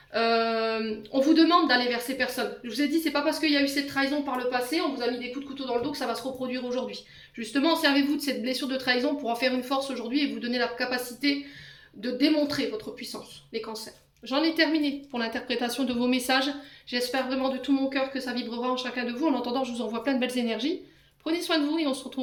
On vous demande d'aller vers ces personnes. Je vous ai dit, c'est pas parce qu'il y a eu cette trahison par le passé, on vous a mis des coups de couteau dans le dos que ça va se reproduire aujourd'hui. Justement, servez-vous de cette blessure de trahison pour en faire une force aujourd'hui et vous donner la capacité de démontrer votre puissance, les cancers. J'en ai terminé pour l'interprétation de vos messages. J'espère vraiment de tout mon cœur que ça vibrera en chacun de vous. En attendant, je vous envoie plein de belles énergies. Prenez soin de vous et on se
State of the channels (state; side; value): identical; both; correlation 1.00